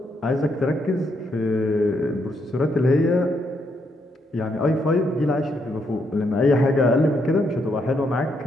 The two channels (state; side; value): normal; both; correlation 0.76